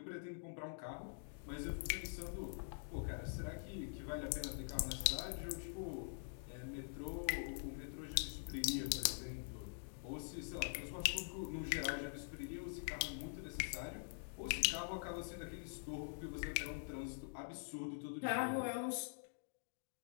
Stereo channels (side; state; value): right; silent; digital silence